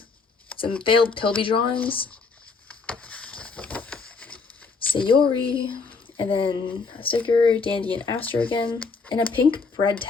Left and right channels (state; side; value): quieter; right; 4.6 dB